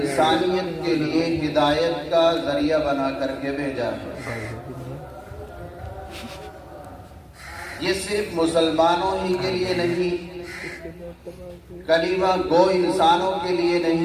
کے لیے ہدایت کا ذریعہ بنا کر کے بھیجا ہے۔ یہ صرف مسلمانوں ہی کے لیے نہیں، کلمہ گو انسانوں کے لیے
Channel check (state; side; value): identical; both; correlation 1.00